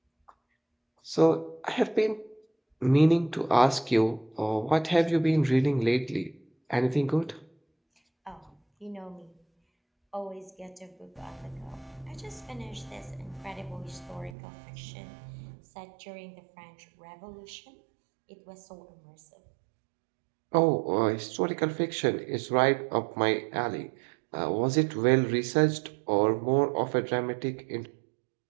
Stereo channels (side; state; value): left; drops out; at 14.4 s